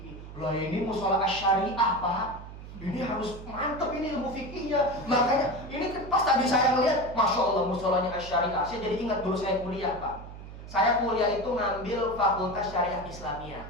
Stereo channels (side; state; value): right; noise; hum, 13 dB below the sound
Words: Loh ini musola syariah Pak, ini harus mantep ini ilmu fikihnya. Makanya ini pas tadi saya ngeliat, Masya Allah musolanya syariah. Saya jadi ingat dulu saya kuliah Pak. Saya kuliah itu ngambil Fakultas Syariah Islamiyah,